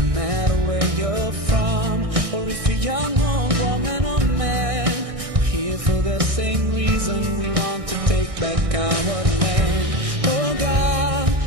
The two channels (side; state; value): left; late; 1.6 ms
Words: matter where you're from, or if you're young or woman or man, we're here for the same reason. We want to take back our land. Oh God,